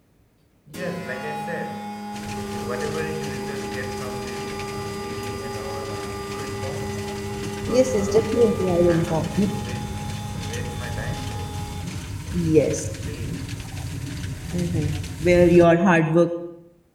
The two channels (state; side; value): identical; both; correlation 1.00